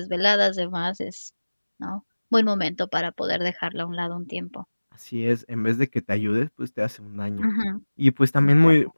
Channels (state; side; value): inverted; both; correlation -1.00